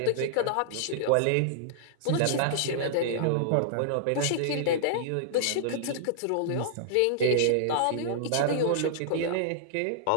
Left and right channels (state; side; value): different; both; correlation -0.01